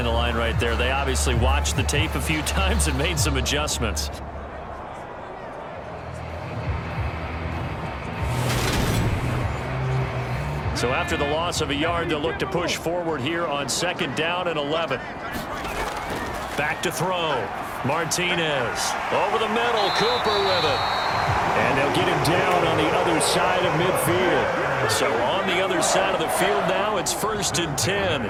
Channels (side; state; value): both; identical; correlation 1.00